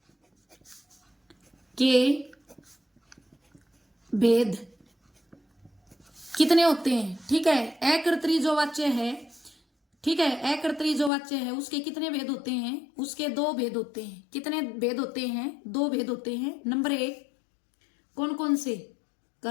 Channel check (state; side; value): drops out; right; at 11.1 s